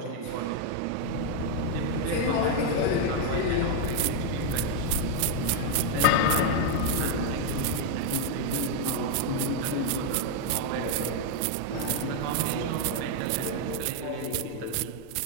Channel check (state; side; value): different; both; correlation 0.00